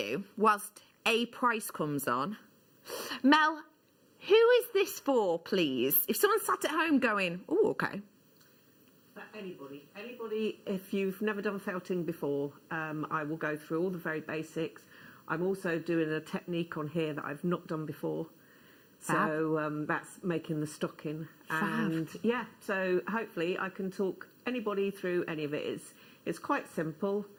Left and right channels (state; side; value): identical; both; correlation 1.00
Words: whilst a price comes on, Mel, who is this for, please? If someone sat at home going, oh, okay. For anybody, if you've never done felting before, I will go through all the very basics. I'm also doing a technique on here that I've not done before. So that's making the stocking. And yeah, so hopefully I can talk anybody through any of it. It's quite simple.